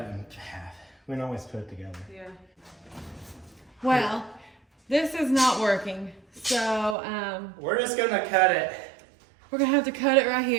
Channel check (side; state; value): left; drops out; at 7.0 s